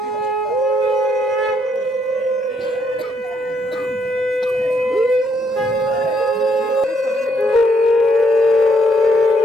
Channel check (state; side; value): normal; both; correlation 0.72